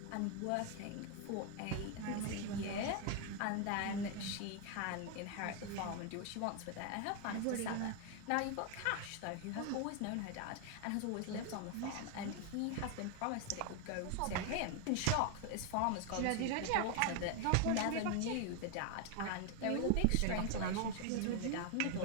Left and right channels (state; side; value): different; both; correlation 0.01